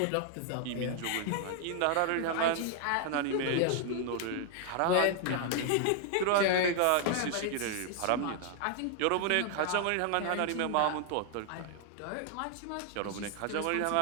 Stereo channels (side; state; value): both; different; correlation 0.00